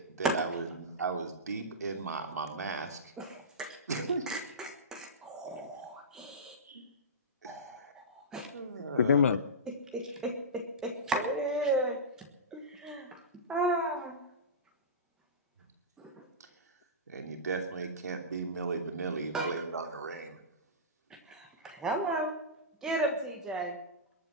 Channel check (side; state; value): both; normal; correlation -0.18